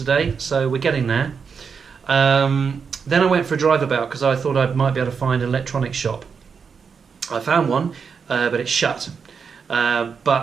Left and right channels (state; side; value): quieter; left; 6.0 dB